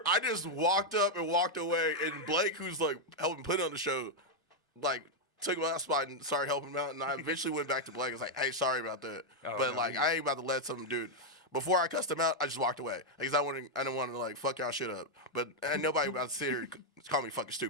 I just walked up and walked away, and Blake, who's like helping put on the show, like took my spot and started helping him out, and I eventually went back to Blake. I was like, hey, sorry about that, I ain't about to let some dude. Before I cussed him out, I just walked away because I didn't want to like fuck y'all shit up. But ain't nobody about to sit here and call me fucking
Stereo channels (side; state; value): both; normal; correlation 0.00